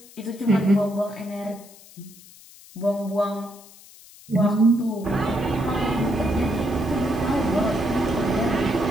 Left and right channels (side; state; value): left; noise; hiss, 22 dB below the sound